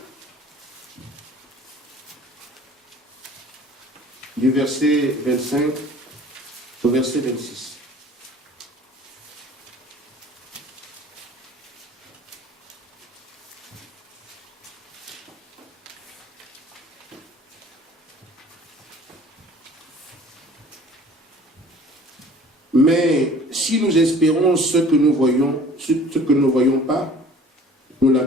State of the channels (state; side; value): normal; both; correlation 0.48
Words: Du verset 25 au verset 26. Mais si nous espérons ce que nous ne voyons pas, nous